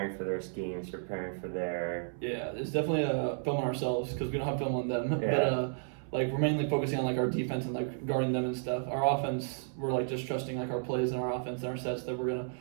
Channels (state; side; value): silent; left; 56 dB below the other